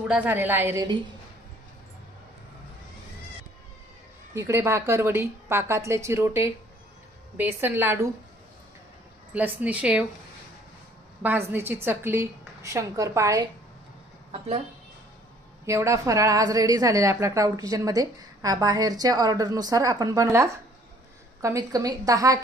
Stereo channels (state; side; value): normal; both; correlation 0.58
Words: झालेला आहे रेडी, इकडे भाकरवडी, पाकातले चिरोटे, बेसन लाडू, लसणी शेव, भाजणीची चकली, शंकरपाळे, आपलं एवढा फराळ आज रेडी झालेला आहे आपल्या क्लाउड किचनमध्ये। बाहेरच्या ऑर्डरनुसार आपण बनवला कमीत कमी 10